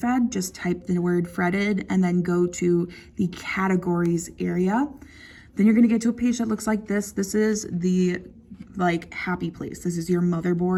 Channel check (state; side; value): identical; both; correlation 1.00